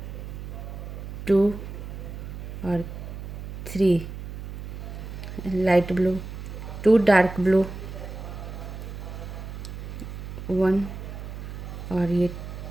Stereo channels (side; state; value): right; noise; hum, 9 dB below the sound